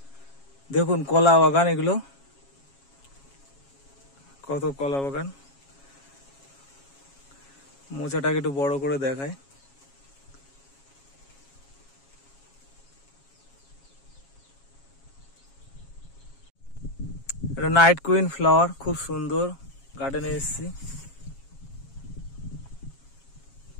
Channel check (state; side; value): late; right; 7.3 ms